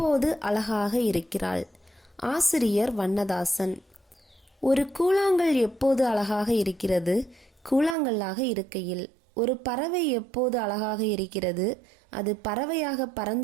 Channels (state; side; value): drops out; left; at 8.0 s